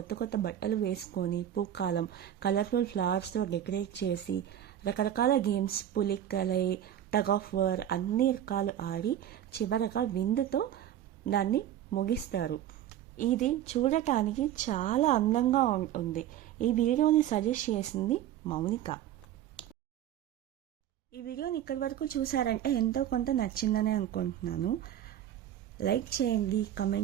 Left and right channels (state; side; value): quieter; left; 11.2 dB